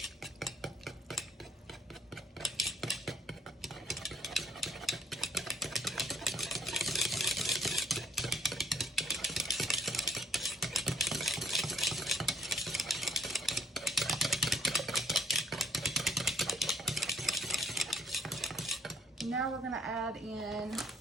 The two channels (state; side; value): normal; both; correlation 0.63